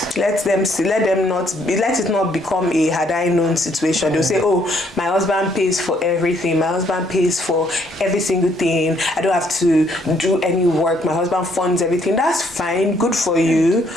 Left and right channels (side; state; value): both; normal; correlation 0.68